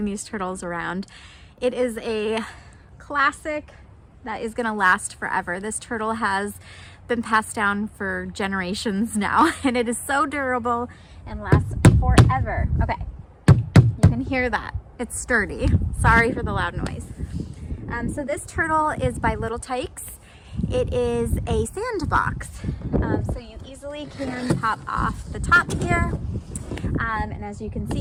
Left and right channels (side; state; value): both; identical; correlation 1.00